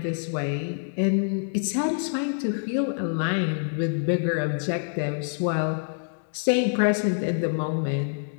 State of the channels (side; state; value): right; silent; digital silence